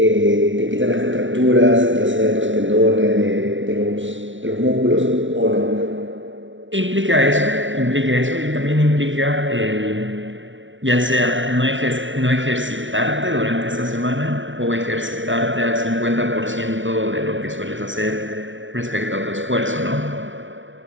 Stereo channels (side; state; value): left; late; 0.56 ms